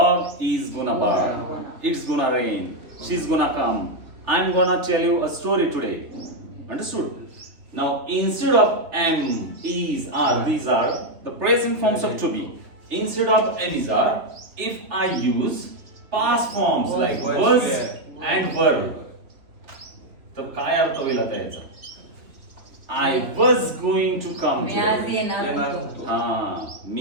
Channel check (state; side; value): late; left; 3.2 ms